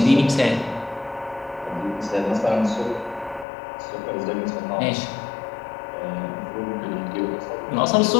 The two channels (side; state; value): right; drops out; at 3.5 s